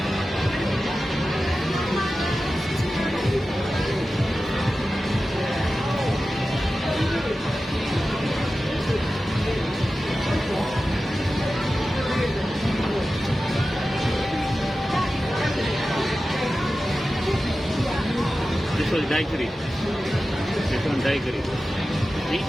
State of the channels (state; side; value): normal; both; correlation 0.94